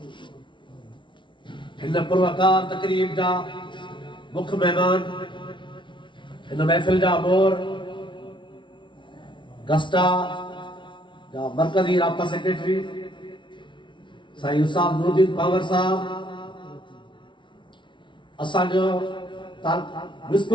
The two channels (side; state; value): right; late; 0.24 ms